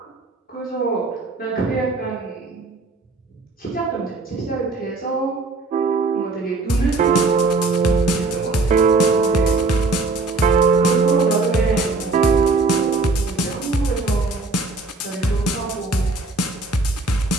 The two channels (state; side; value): quieter; left; 3.6 dB